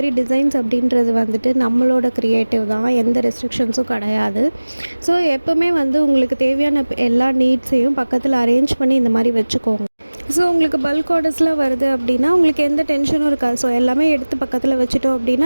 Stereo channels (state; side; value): inverted; both; correlation -1.00